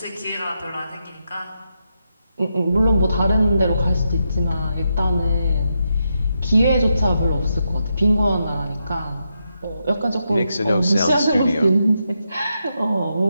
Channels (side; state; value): both; inverted; correlation -0.84